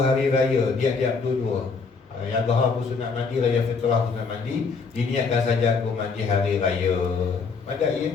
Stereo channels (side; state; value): right; quieter; 4.8 dB